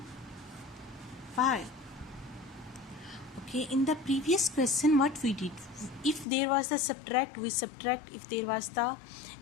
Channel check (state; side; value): drops out; right; at 6.2 s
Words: Okay, in the previous question what we did, if there was the subtract, we subtract. If there was the